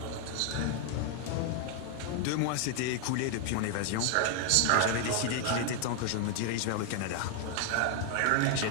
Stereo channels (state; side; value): different; both; correlation 0.00